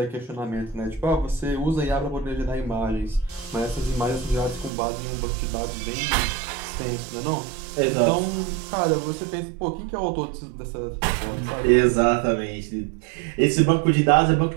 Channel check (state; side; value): drops out; left; at 4.7 s